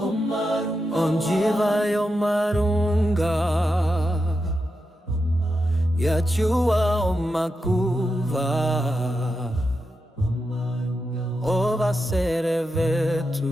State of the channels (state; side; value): normal; both; correlation 0.88